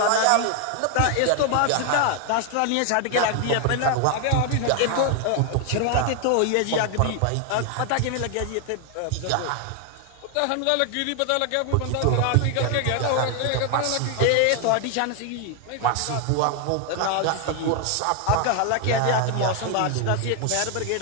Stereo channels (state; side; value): different; both; correlation 0.00